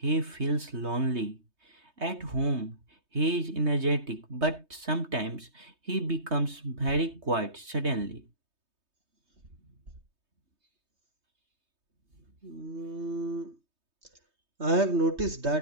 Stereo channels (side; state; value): left; late; 3.2 ms